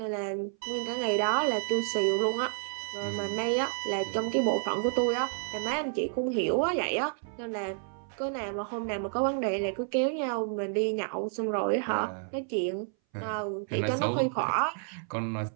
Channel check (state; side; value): silent; left; 58 dB below the other